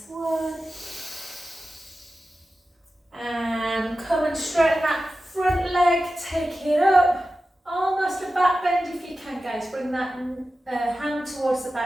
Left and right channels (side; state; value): both; normal; correlation 0.93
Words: one, and come and straighten that front leg, take it up, almost a back bend if you can, guys. Bring that hand towards the